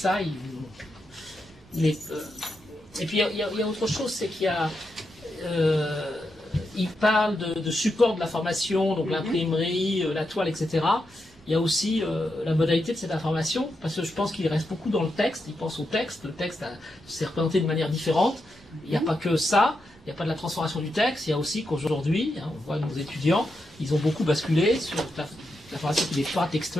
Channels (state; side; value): normal; both; correlation 0.85